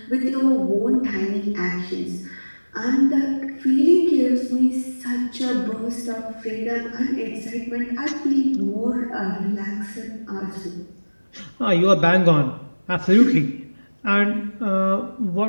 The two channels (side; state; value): both; inverted; correlation -1.00